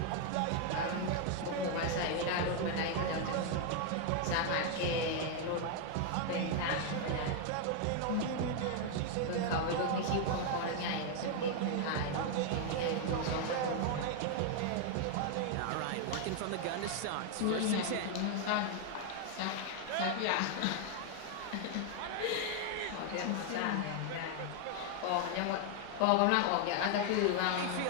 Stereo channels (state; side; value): different; both; correlation 0.00